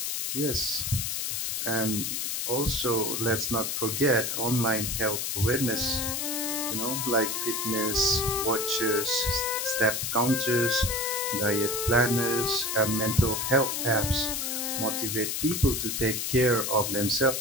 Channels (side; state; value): left; noise; hiss, 1 dB below the sound